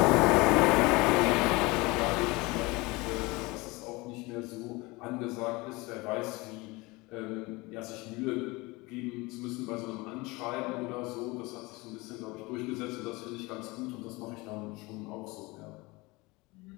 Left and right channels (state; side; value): quieter; right; 23.7 dB